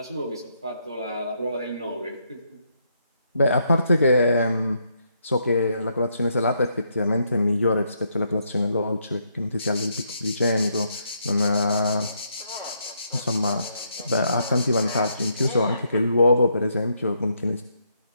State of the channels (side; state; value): both; inverted; correlation -0.76